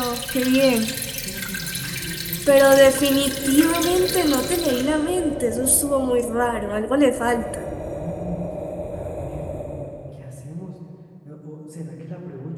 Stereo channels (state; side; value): identical; both; correlation 1.00